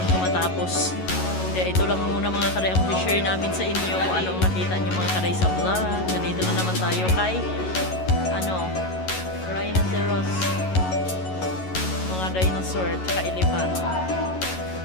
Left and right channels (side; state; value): right; late; 11 ms